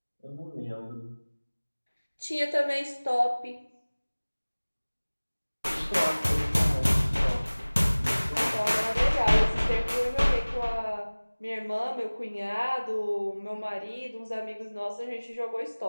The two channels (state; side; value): inverted; both; correlation -1.00